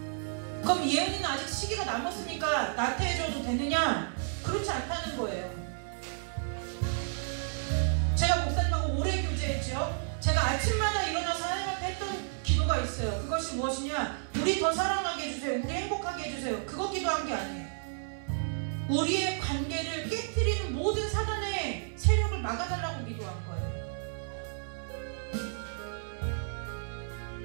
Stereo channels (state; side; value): silent; left; 57 dB below the other